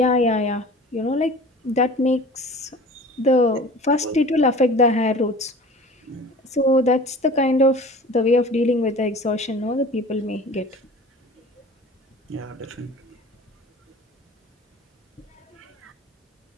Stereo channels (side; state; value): both; normal; correlation 0.41